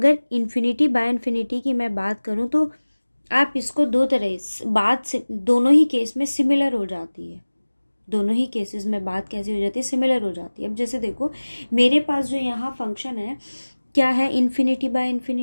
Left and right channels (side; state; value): both; inverted; correlation -1.00